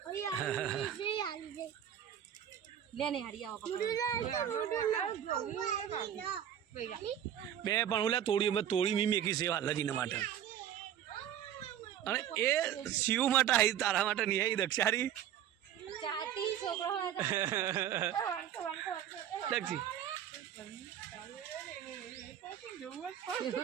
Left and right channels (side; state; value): left; quieter; 10.2 dB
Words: ગઈ લે ને હારી આવો બે પણ ઓલા તોડી મી મેકી સેવા લજીને માટે અને એ શિવ માટે આવી તારા માટે નહીં આવી દક્ષારી ચાટી છોકરો દક્ષી